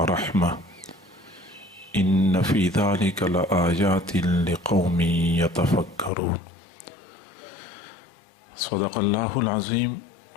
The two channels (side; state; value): right; drops out; at 6.1 s